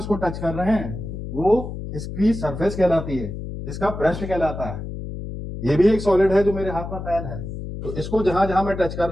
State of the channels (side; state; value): left; noise; hum, 8 dB below the sound